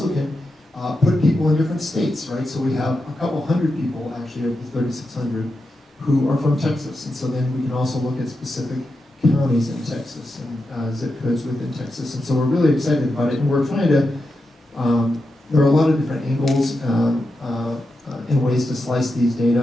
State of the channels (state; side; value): normal; both; correlation 0.88